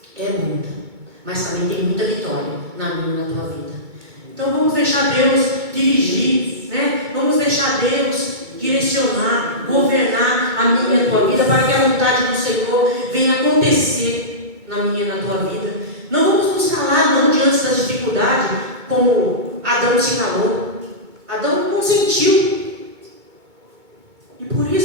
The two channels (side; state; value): left; late; 2.2 ms